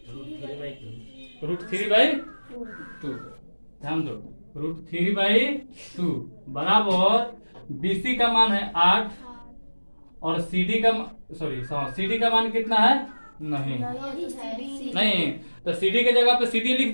√3/2। ध्यान दो, √3/2 बराबर BC का मान है 8 और CD का मान कितना है? नहीं, तो CD के जगह पे CD लिख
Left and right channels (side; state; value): both; inverted; correlation -1.00